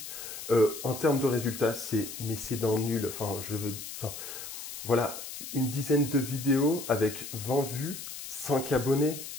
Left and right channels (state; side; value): noise; left; hiss, 9 dB below the sound